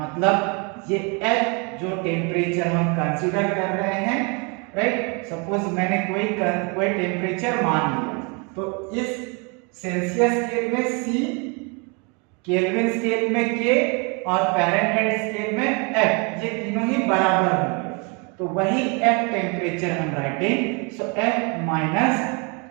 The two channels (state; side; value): quieter; left; 32.7 dB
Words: ये F जो टेम्परेचर हम कंसीडर कर रहे हैं, राइट। सपोज मैंने कोई टेम्परेचर मान लिया, तो इस सेल्सियस स्केल में C, केल्विन स्केल में K और फ़ारेनहाइट स्केल में F, ये तीनों ही बराबर होंगे। तो वही F टेम्परेचर हम writing, so F minus